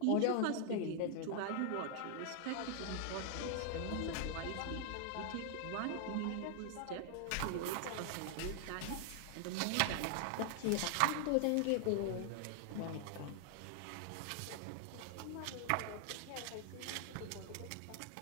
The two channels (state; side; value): different; both; correlation 0.00